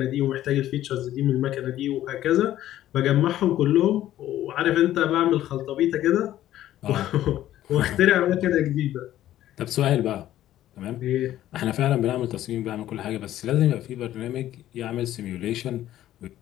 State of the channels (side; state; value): right; quieter; 13.1 dB